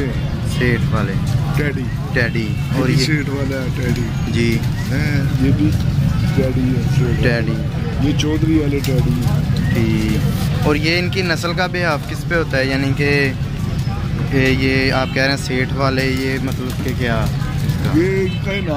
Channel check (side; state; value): both; identical; correlation 1.00